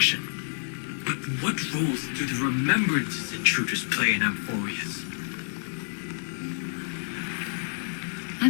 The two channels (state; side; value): silent; right; digital silence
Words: But what roles do the remembrances intruders play in Amphoreus? I